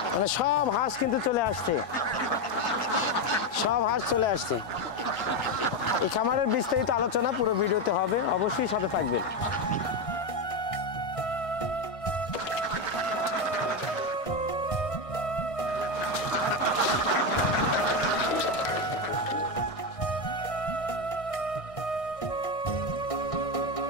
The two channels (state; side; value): late; right; 1.6 ms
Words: মানে সব হাঁস কিন্তু চলে আসছে, সব হাঁস চলে আসছে। এই খামারের বিস্তারিত আলোচনা পুরো ভিডিওতে হবে, অবশ্যই সাথে থাকবেন।